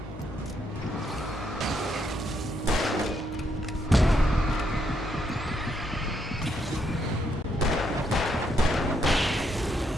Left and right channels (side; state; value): both; normal; correlation 0.76